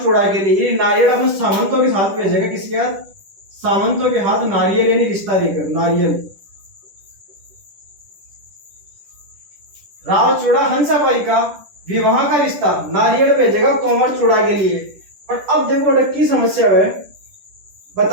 चूड़ा के लिए नारियल अपने सामंतों के साथ भेजेगा। किसके हाथ? सामंतों के हाथ नारियल यानी रिश्ता देकर। नारियल राव चूड़ा हंसाबाई का विवाह का रिश्ता नारियल भेजेगा कंवर चूड़ा के लिए। पर अब देखो की समस्या है,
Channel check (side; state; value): left; late; 10 ms